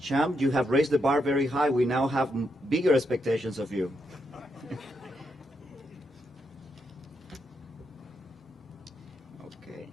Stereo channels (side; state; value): both; normal; correlation 0.80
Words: CSUMB, you have raised the bar very high. We now have bigger expectations of you. Okay.